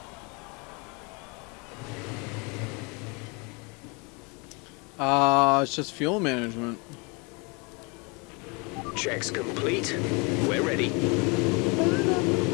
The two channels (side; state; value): right; quieter; 30.1 dB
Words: It's just fuel management. Checks complete. We're ready.